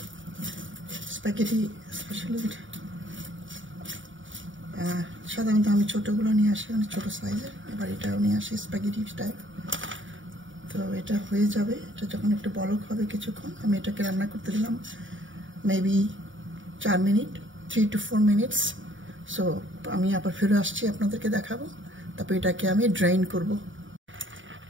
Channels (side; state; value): left; late; 0.56 ms